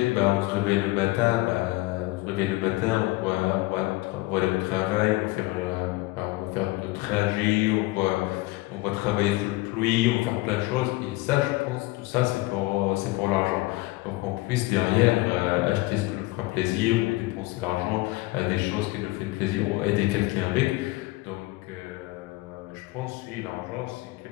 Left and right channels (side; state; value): right; quieter; 20.7 dB